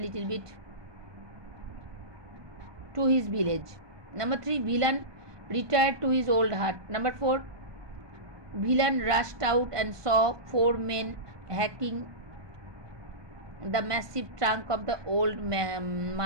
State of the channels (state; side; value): late; left; 1.2 ms